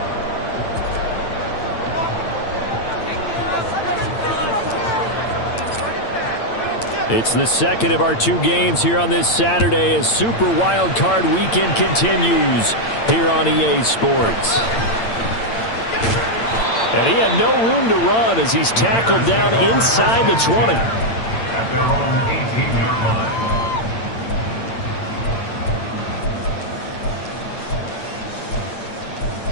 It's the second of our two games here on this Saturday as Super Wild Card Weekend continues here on EA Sports. And he had no room to run as he's tackled down inside the 20. At their own 18-yard line.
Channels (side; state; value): right; late; 8.8 ms